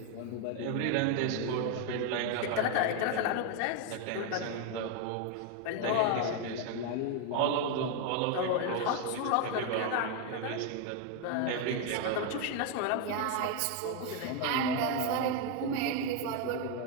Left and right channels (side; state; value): both; different; correlation 0.01